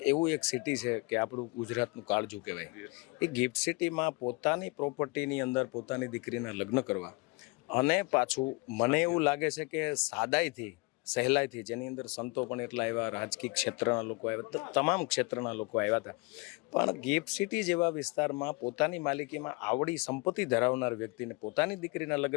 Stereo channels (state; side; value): quieter; right; 26.9 dB